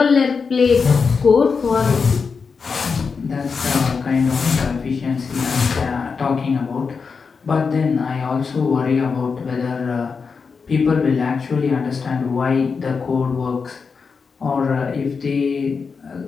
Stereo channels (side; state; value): right; quieter; 5.3 dB